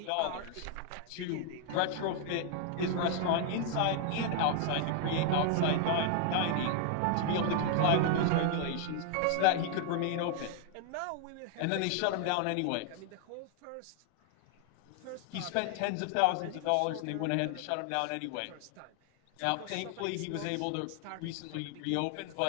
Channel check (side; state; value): both; different; correlation 0.00